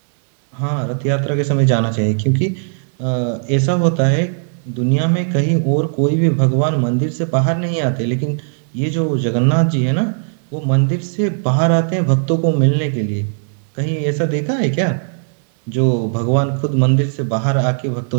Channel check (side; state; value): left; silent; digital silence